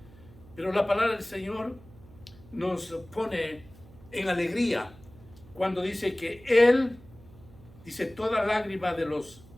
Pero la palabra del Señor nos pone en alegría cuando dice que Él, dice, toda lágrima de los,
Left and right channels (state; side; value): noise; right; hum, 22 dB below the sound